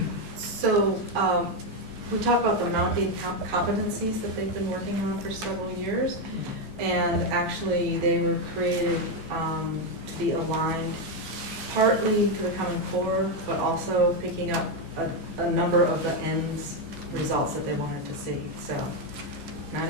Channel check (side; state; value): left; late; 15 ms